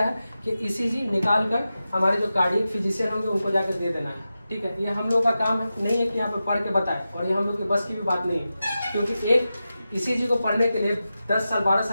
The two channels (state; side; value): inverted; both; correlation -0.92